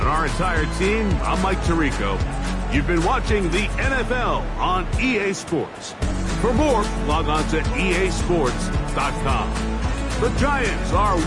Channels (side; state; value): both; identical; correlation 1.00